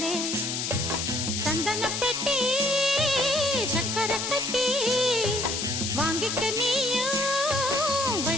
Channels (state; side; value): noise; left; hiss, 2 dB below the sound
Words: சந்தன பெட்டி சக்கரை கட்டி வாங்கிக்க நீயும்